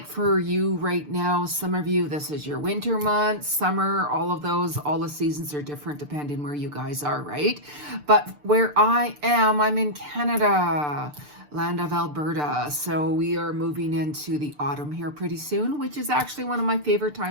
for you right now, some of you, this is your winter months, summer, all of those, all the seasons are different depending where you guys are, right? But where I am, I'm in Canada, land of Alberta. So we are moving into the autumn here pretty soon, which is actually one of my favorite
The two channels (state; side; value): late; left; 6.8 ms